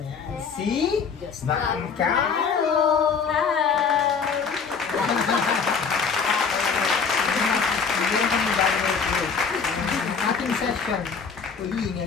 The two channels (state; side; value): quieter; right; 5.8 dB